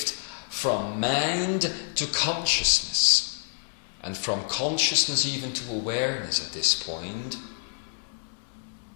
from mind to consciousness, and from consciousness even to awareness at this point.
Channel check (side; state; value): right; silent; digital silence